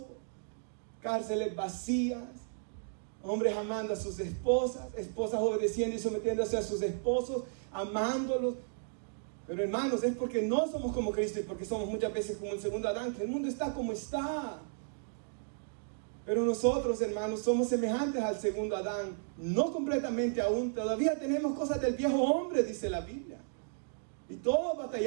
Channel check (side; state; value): left; silent; digital silence